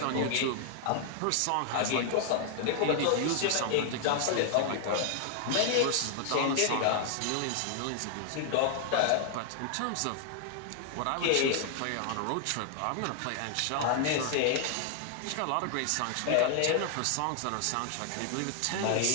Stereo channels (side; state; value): both; different; correlation 0.00